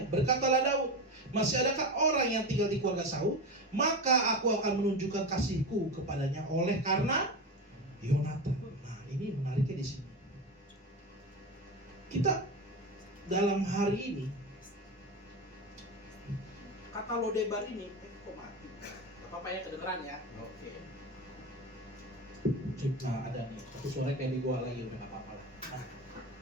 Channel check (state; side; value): normal; both; correlation 0.22